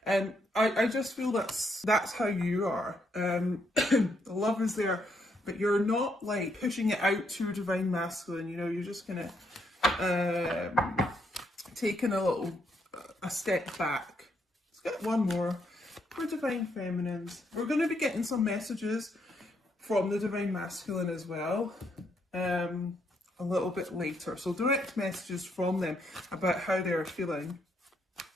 and I just feel that's how you are. The love is there, but you're not like pushing it out to your divine masculine, you're just kind of taking a step back. Let's get one more for divine feminines. We're going to be getting some messages from the divine masculine as well a little bit later, so direct messages from them about how they're feeling.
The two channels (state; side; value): normal; both; correlation 0.75